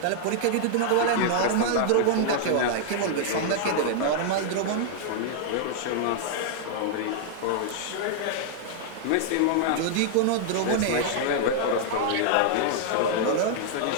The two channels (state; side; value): different; both; correlation -0.01